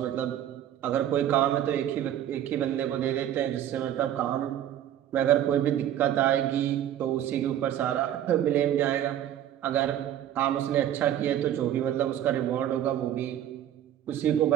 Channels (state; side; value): quieter; left; 11.2 dB